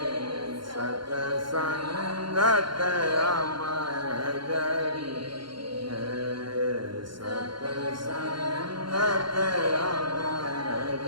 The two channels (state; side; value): late; left; 0.73 ms